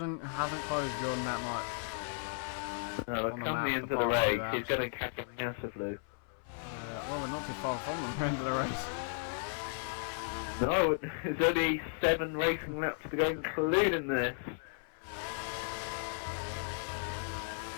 closed Jordan that much. No, on the come map, the end of the apart from race, that. he's going to catch him massively. Well, we're not too far from them end of the race. No, there's only 7 racing laps to go, including this.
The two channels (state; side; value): silent; right; 54 dB below the other